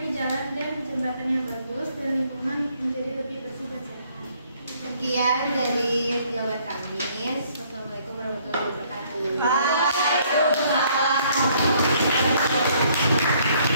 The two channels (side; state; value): both; inverted; correlation -0.64